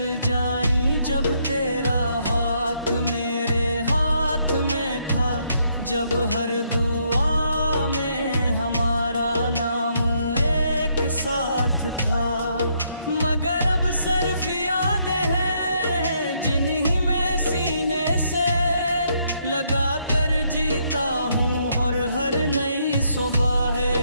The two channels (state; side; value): inverted; both; correlation -0.73